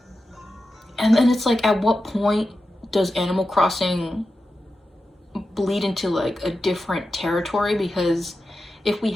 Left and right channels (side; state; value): both; normal; correlation 0.91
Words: And then it's like, at what point does Animal Crossing bleed into like a different territory? Because if we